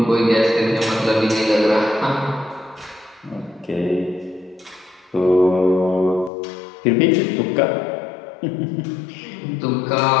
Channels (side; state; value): right; drops out; at 6.3 s